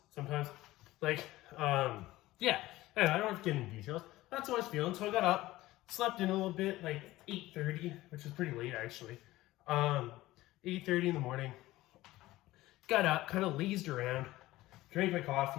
sometimes. Like, yeah. And I don't have to get into details. That's how I was feeling. So I got up, slept in a little bit, like 8:30, which is pretty late actually. 8:30 in the morning. Got up, kind of lazed around, drank my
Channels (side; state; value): right; quieter; 17.2 dB